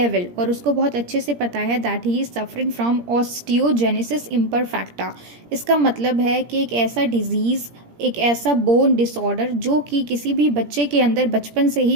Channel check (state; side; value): late; left; 17 ms